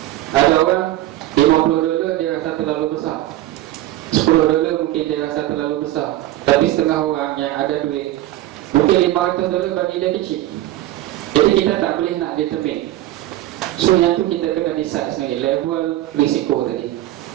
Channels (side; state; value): left; quieter; 15.0 dB